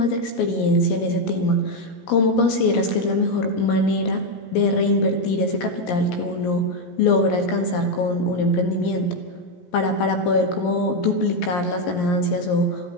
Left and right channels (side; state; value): right; late; 17 ms